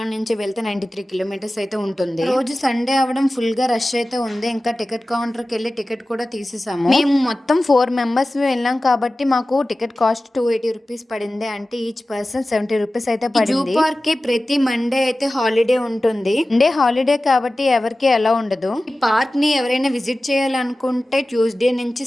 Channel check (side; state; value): both; normal; correlation 0.96